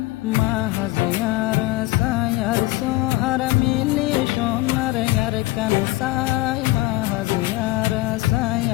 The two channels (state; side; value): quieter; right; 19.3 dB